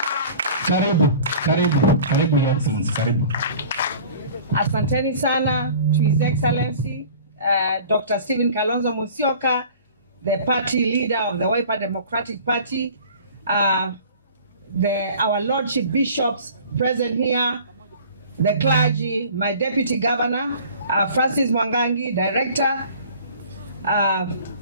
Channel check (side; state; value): both; inverted; correlation -0.45